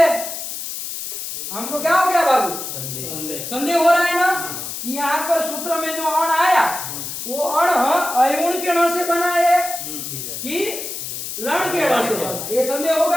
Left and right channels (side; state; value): left; noise; hiss, 7 dB below the sound